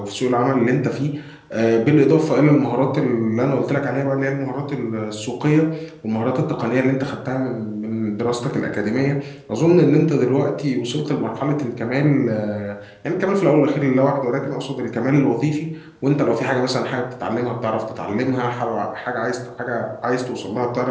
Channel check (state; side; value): identical; both; correlation 1.00